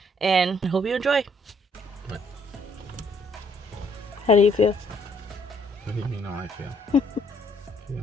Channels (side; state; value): both; normal; correlation 0.67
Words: and I hope you enjoy. What? How do you feel? What do you mean how I feel?